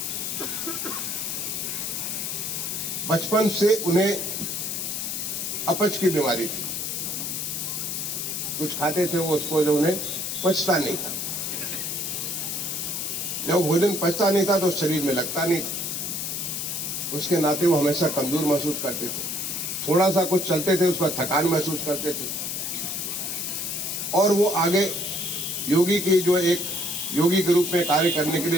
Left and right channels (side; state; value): left; noise; hiss, 3 dB below the sound